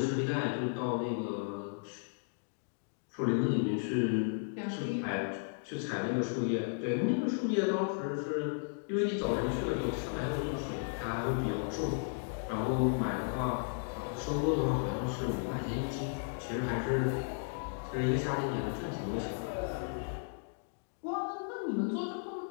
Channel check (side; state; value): right; silent; digital silence